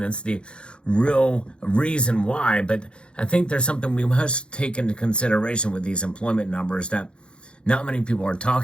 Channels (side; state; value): right; late; 0.055 ms